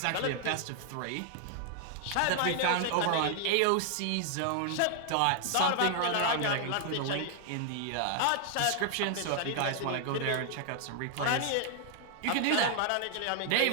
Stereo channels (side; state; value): both; different; correlation 0.00